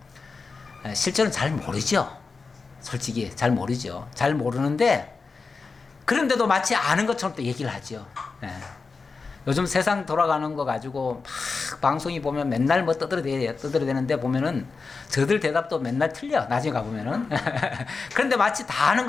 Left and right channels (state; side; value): quieter; right; 4.5 dB